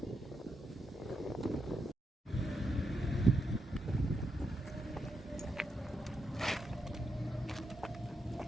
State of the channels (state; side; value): normal; both; correlation 0.83